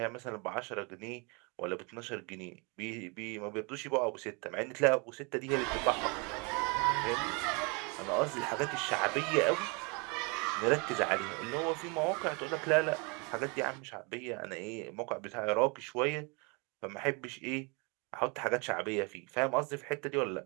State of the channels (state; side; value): quieter; left; 31.2 dB